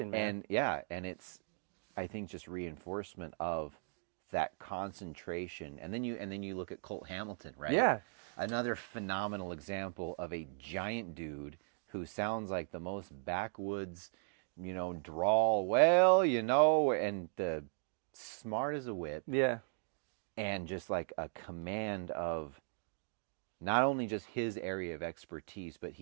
man. And it's, I think, just reinforcement of that concentration. And then you look at Colt Hamilton, right? Yeah. Another phenomenal example of a giant dude who sounds like the most backwoods, drawl, and the smart as a whip. Yeah. And just a command of not only just his area of expertise, but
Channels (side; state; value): left; silent; digital silence